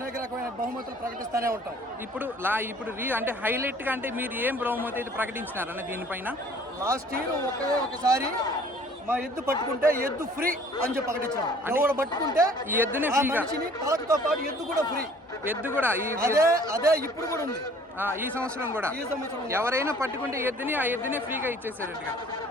రకమైన బహుమతులు ప్రకటిస్తూనే ఉంటాం. ఇప్పుడు అంటే హైలైట్ గా అంటే మీరు ఏం బహుమతి అయితే ప్రకటించినారన్న దీనిపైన? లాస్ట్ ఇయర్ ఒకసారి మా ఎద్దు పట్టుకుంటే ఎద్దు ఫ్రీ అని చెప్పి ప్రకటించాం. ఎవరు పట్టుకుంటే ఈ ఎద్దుని మనిషిని పలకతో పాటు ఎద్దు కూడా ఫ్రీ. ఎద్దు కూడా అదే ఇప్పుడు కూడా ఉంది. ఈ సంవత్సరం కూడా ఎవరైనా పట్టుకుంటే ఎద్దుని ఆ ఎద్దునే ఫ్రీగా ఇచ్చేసారట్టుగా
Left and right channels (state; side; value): normal; both; correlation 0.54